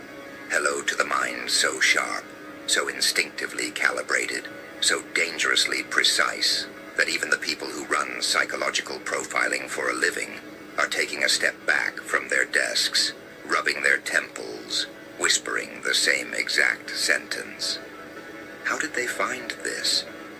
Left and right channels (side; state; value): both; identical; correlation 1.00